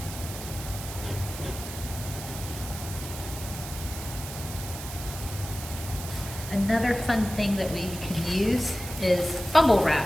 Another fun thing that we can use is bubble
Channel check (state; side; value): noise; right; hiss, 10 dB below the sound